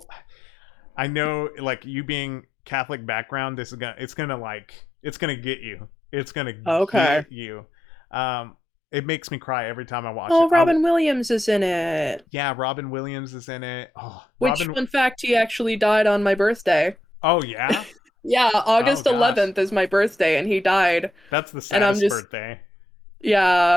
I know like you being Catholic background, it's gonna like it's gonna get you. It's gonna Okay. get you. Um it makes me cry every time I watch it. Oh, Robin Williams is in it. Yeah, Robin Williams is in it. Oh, Which, Robin. fun fact, he actually died on my birthday. Oh yeah. Yeah, Oh August gosh, 11th is my birthday, and he died. that's the And I'm saddest just, birthday.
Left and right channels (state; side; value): normal; both; correlation 0.84